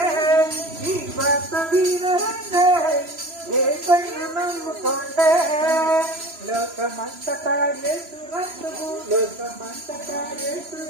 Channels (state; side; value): late; left; 3.0 ms